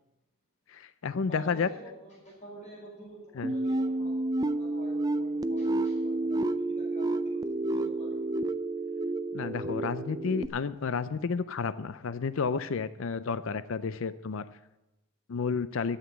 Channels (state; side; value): normal; both; correlation 0.48